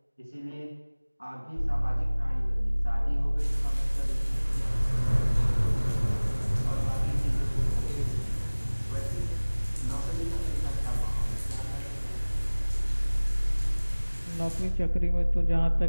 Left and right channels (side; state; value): both; inverted; correlation -1.00